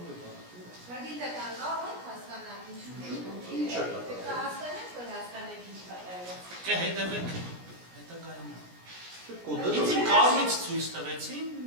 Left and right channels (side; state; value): left; late; 17 ms